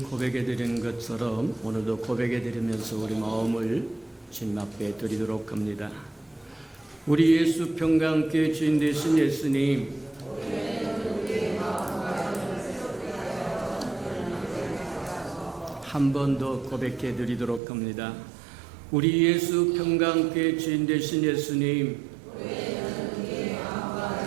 드린 것처럼 오늘도 고백해 드리면서 우리 마음을 주님 앞에 드리도록 합니다. 우리 예수 평강교회 주인 되신 예수님, 한 번 더 고백해 드리도록 합니다. 우리 예수 평강교회 주인 되신 예수님,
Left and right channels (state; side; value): drops out; left; at 17.6 s